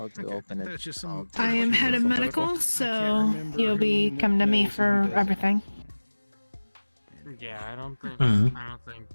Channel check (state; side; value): inverted; both; correlation -1.00